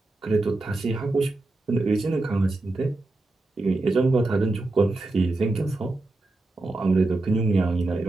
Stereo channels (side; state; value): left; quieter; 3.0 dB